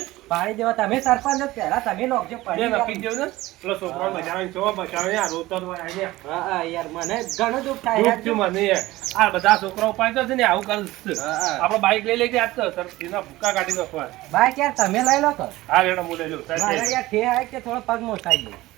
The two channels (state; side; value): quieter; left; 18.1 dB